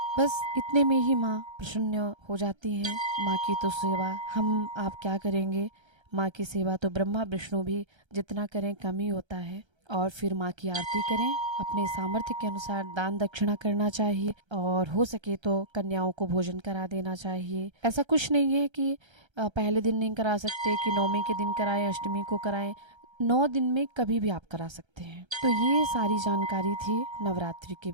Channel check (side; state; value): left; late; 1.3 ms